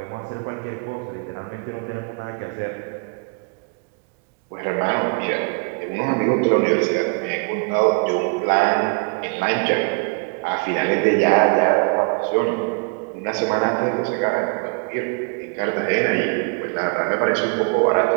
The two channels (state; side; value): quieter; left; 34.8 dB